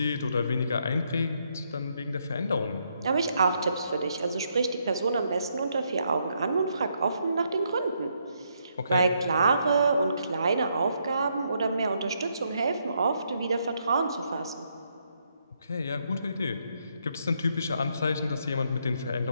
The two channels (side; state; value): both; inverted; correlation -0.76